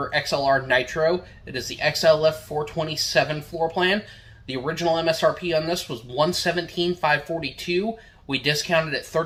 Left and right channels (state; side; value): identical; both; correlation 1.00